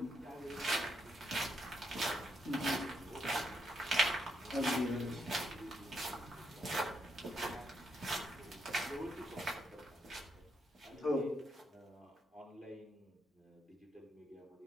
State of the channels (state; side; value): normal; both; correlation 0.78